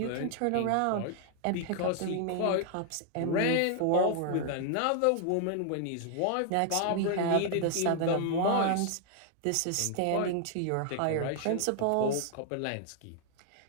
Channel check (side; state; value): both; different; correlation 0.00